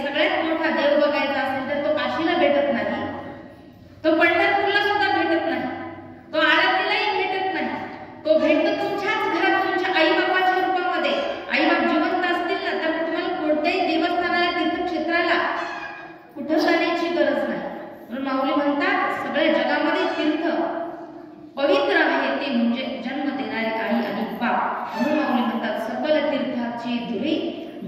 सगळ्यात मोठा देव बघायचा असेल तर तो काशीला भेटत नाही, तो पंढरपूरला सुद्धा भेटत नाही, तो आरतीलाही भेटत नाही. तो भेटतो तुमच्याच घरात, तुमच्या आई बापाच्या रूपामध्ये. आई बाप जिवंत असतील ना तर तुम्हाला कोणत्याही देवस्थानाला, तीर्थक्षेत्राला कुठं जाण्याची गरज नाही. म्हणून माऊली म्हणतात सगळ्या जगामध्ये तीर्थ पवित्र आहे ते म्हणजे जन्म देणारे आई आणि बाप. म्हणून माऊली म्हणतात सकल तीर्थाचे धुरे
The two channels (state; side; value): identical; both; correlation 1.00